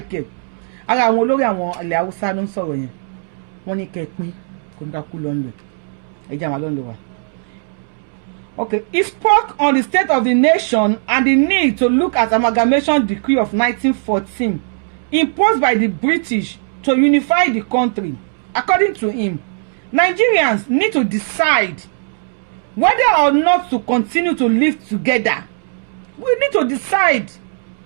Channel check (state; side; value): silent; left; 68 dB below the other